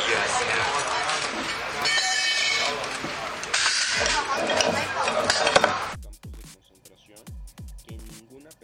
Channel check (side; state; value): both; identical; correlation 1.00